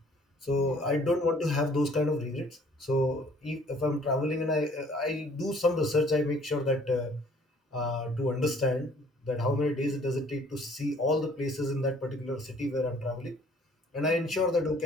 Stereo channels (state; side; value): normal; both; correlation 0.57